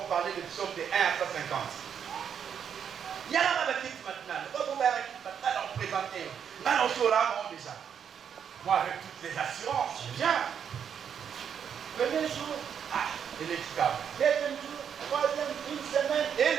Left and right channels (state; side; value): quieter; left; 7.9 dB